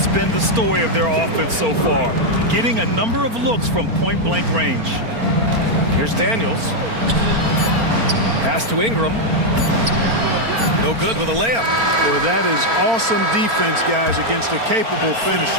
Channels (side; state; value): left; late; 4.4 ms